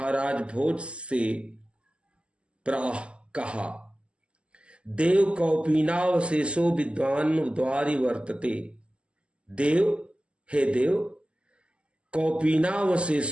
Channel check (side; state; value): left; late; 0.054 ms